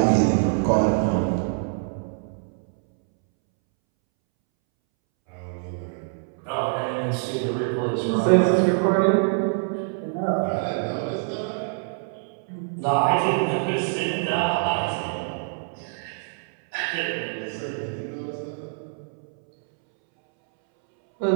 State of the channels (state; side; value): silent; left; 62 dB below the other